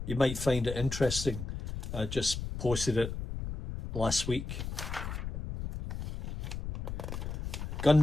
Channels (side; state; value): left; noise; rumble, 5 dB below the sound